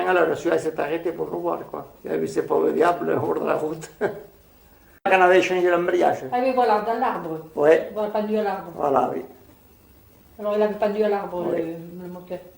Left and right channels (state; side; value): identical; both; correlation 1.00